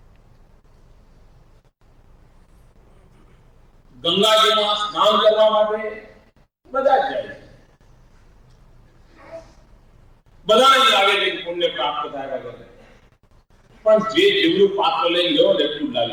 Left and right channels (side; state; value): both; identical; correlation 1.00